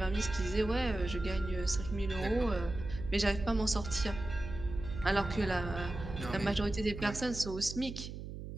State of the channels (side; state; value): right; noise; hum, 9 dB below the sound